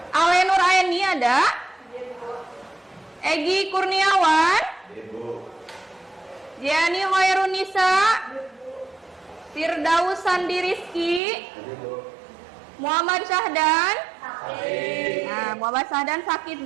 Alenur Aini ada? Egi Kurniawan? Jiani Hoirunisa? Firdaus Sandi Rizki? Muhammad Syahdan? Nah, Muhammad Syahdan sakit.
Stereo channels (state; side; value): drops out; left; at 11.2 s